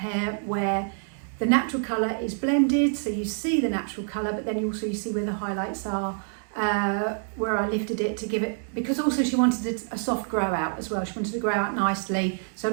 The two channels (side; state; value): left; silent; 60 dB below the other